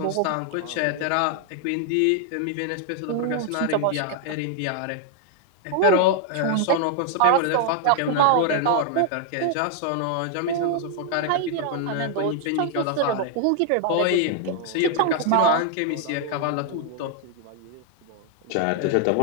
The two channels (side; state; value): both; different; correlation 0.00